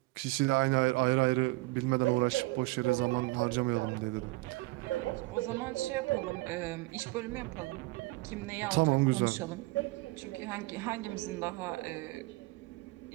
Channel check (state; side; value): quieter; left; 22.2 dB